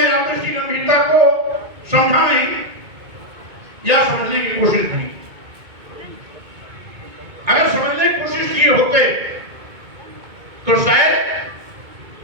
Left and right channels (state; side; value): late; left; 2.2 ms